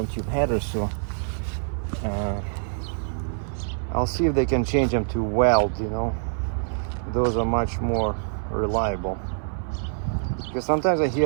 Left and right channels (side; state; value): left; silent; 59 dB below the other